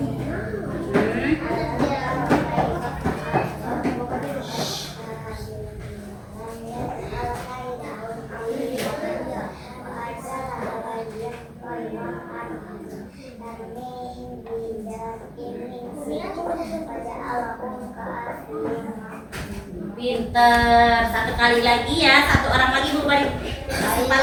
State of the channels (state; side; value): identical; both; correlation 1.00